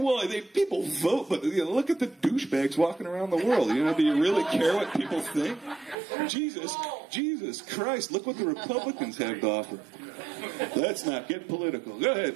People vote, but look at the douchebags walking around the world. Do you really care what people think? Jesus Christ, look what the Republicans have to offer. Let's not get political. Go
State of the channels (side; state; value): left; drops out; at 6.0 s